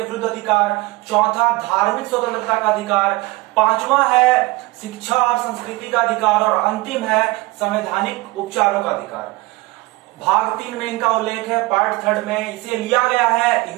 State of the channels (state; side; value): quieter; left; 21.5 dB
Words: विरुद्ध अधिकार, चौथा धार्मिक स्वतंत्रता का अधिकार, 5वां है शिक्षा और संस्कृति का अधिकार और अंतिम है संवैधानिक उपचारों का अधिकार। भाग 3 में इनका उल्लेख है। पार्ट 3 में इसे लिया गया है